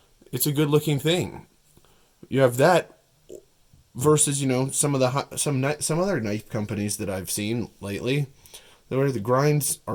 a good looking thing. You have that versus some of the some other knife companies that I've seen lately, where the grinds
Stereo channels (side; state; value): both; identical; correlation 1.00